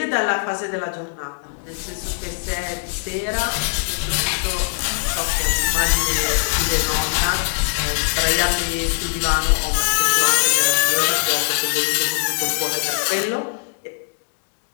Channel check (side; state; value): right; silent; digital silence